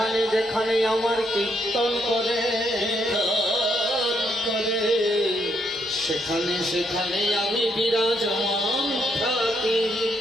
যেখানে আমার কীর্তন করে সেখানে সেখানে আমি বিরাজমান থাকি।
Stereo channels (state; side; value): normal; both; correlation 0.75